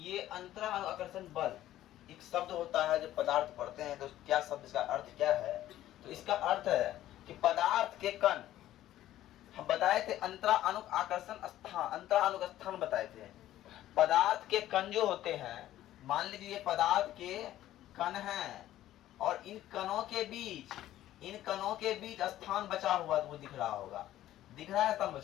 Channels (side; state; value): right; quieter; 13.5 dB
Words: ये अंतरानुआकर्षण बल एक शब्द होता है। जब पदार्थ पढ़ते हैं तो क्या शब्द, इसका अर्थ क्या है? तो इसका अर्थ है कि पदार्थ के कण, हम बताए थे अंतरानुआकर्षण स्थान, अंतरानुक स्थान बताए थे। पदार्थ के कण जो होते हैं, मान लीजिए पदार्थ के कण हैं और इन कणों के बीच स्थान बचा हुआ, तो वो दिख रहा होगा, दिख रहा है स्थान